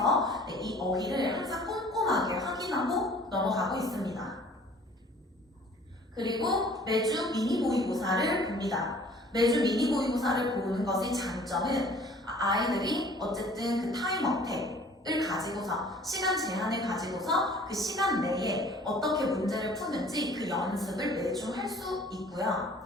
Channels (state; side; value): normal; both; correlation 0.51